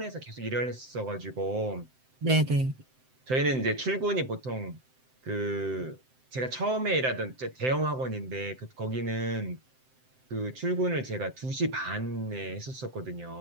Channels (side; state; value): left; late; 7.7 ms